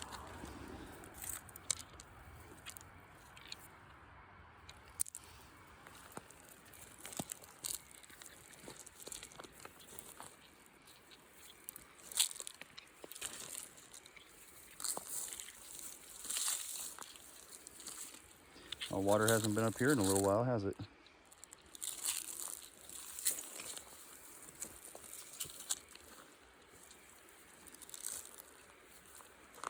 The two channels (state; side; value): identical; both; correlation 1.00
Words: Well, water hasn't been up here in a little while, has it?